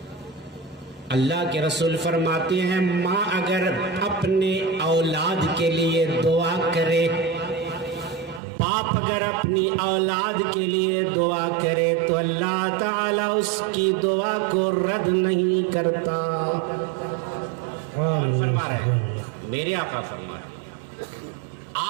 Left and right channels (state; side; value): drops out; left; at 8.4 s